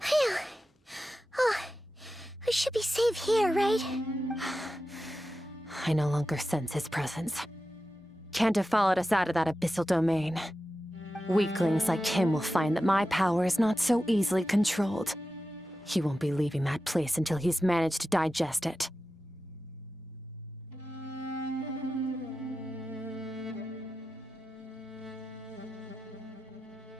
Oh, I should be safe here, right? I no longer sense his presence. Can't have followed us out of that abyssal domain. Weaklings like him will find that my power is not so easily controlled. He won't be leaving that place until he's managed to digest it.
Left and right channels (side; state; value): both; normal; correlation 0.92